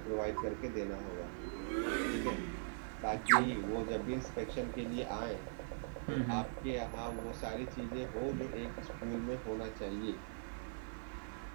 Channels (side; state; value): left; silent; 50 dB below the other